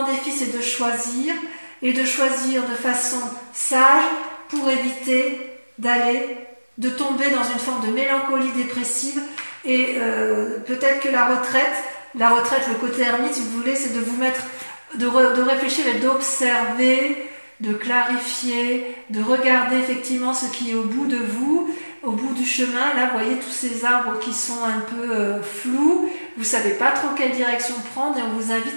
défi c'est de choisir, et de choisir de façon sage pour éviter de tomber dans une forme de mélancolie dépressive, et peut-être que la retraite, le côté ermite si vous voulez, c'est de vous mettre, de réfléchir et d'observer, de clarifier, de regarder effectivement ce qui est au bout de vous, au bout du chemin. Là, vous voyez tous ces arbres qui sont un peu flous, vous ne savez pas trop quelle direction prendre, et on vous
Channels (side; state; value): both; inverted; correlation -1.00